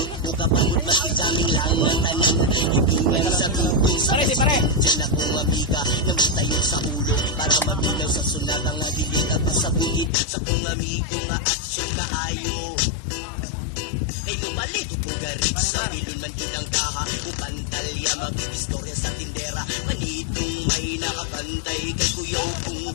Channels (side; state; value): right; drops out; at 10.1 s